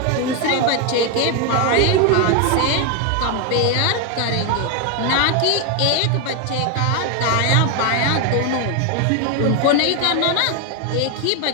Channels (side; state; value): both; different; correlation 0.01